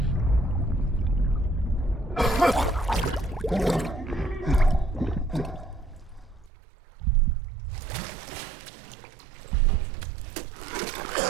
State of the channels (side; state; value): left; drops out; at 6.5 s